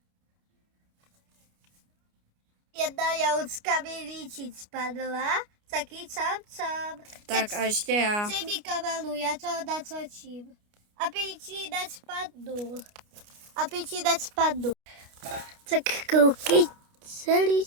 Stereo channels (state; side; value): late; left; 29 ms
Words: Jedna jahučka mi líčit spadla, taky čam. Tak a ještě já. Přej mi kamelu, já to natočím. Aby ti nespadnu. Tak koukej